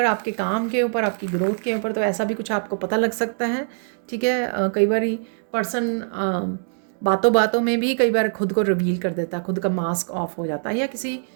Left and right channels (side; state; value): left; silent; digital silence